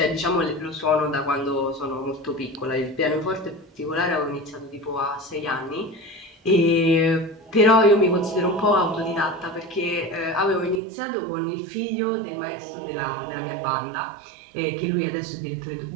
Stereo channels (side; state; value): left; drops out; at 10.8 s